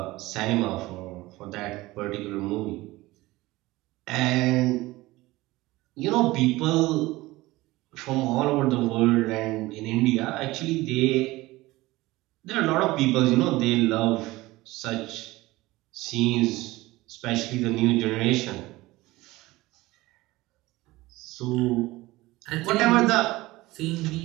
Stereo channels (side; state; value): left; quieter; 19.3 dB